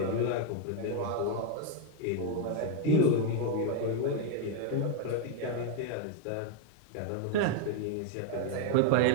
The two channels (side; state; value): both; different; correlation 0.01